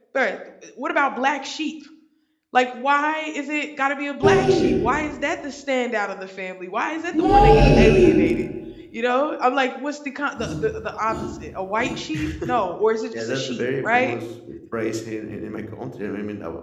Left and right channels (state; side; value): identical; both; correlation 1.00